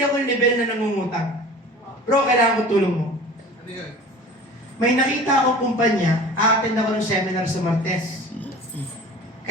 ako yung level na nangungutang. Bro, kailangan ko tulong mo. May nakita ako kumpanya, a-attend ako ng seminar sa Martes.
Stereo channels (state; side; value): normal; both; correlation 0.41